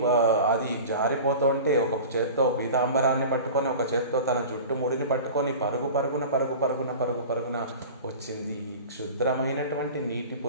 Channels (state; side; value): inverted; both; correlation -0.36